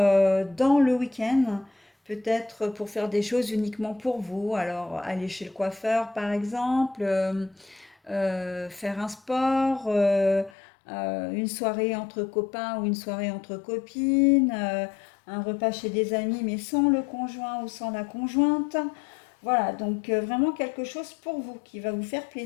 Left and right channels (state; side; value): drops out; right; at 10.5 s